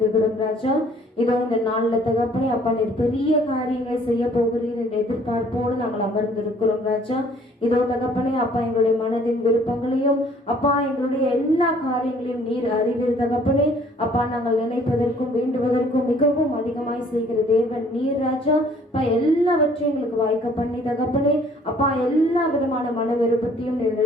ராஜா. இதோ இந்த நாளில் தகப்பனை அப்பா, நீர் பெரிய காரியங்களை செய்ய போகிறீர் என்ற எதிர்பார்ப்போடு நாங்கள் அமர்ந்திருக்கிறோம் ராஜா. இதோ தகப்பனை அப்பா, எங்களுடைய மனதின் விருப்பங்களையும் அப்பா, எங்களுடைய எல்லா காரியங்களையும் நீர் அறிவீர் தகப்பனே. அப்பா, நாங்கள் நினைப்பதற்கும் வேண்டுவதற்கும் மிகவும் அதிகமாய் செய்கிற தேவன் நீர் ராஜா. அப்பா, எல்லாவற்றையும் எங்களுக்கு வாய்க்க பண்ணி தகப்பனே அப்பா, எல்லா விதமான மன விருப்பத்தையும்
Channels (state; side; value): normal; both; correlation 0.58